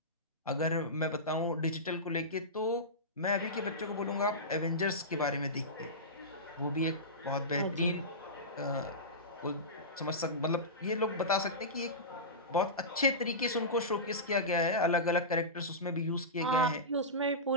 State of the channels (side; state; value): both; normal; correlation -0.18